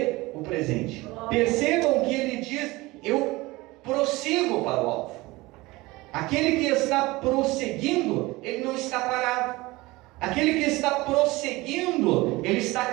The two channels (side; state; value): left; quieter; 21.2 dB